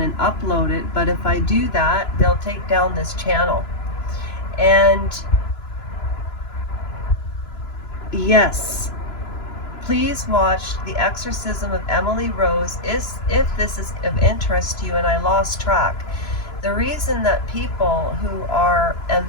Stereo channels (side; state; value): right; late; 3.0 ms